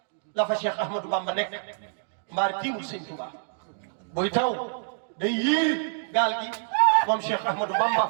la fa Cheikh Ahmadou Bamba nekk mbaar tiimul Sëñ Tuubaa buy taw day yiir gaal gi moom Cheikh Ahmadou Bamba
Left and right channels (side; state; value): left; silent; digital silence